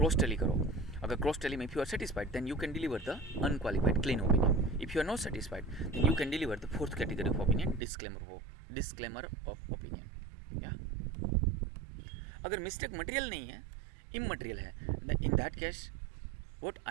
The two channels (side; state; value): left; drops out; at 7.8 s